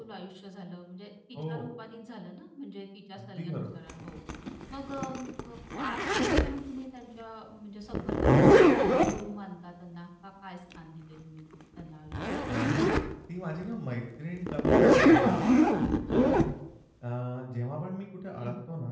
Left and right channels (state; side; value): identical; both; correlation 1.00